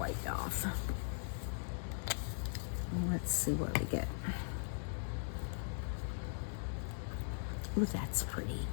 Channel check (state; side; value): silent; right; digital silence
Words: off. Let's see what we get. Ooh, that's pretty.